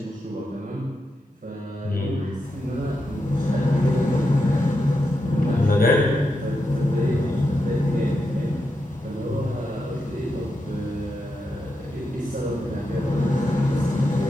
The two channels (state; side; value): normal; both; correlation 0.86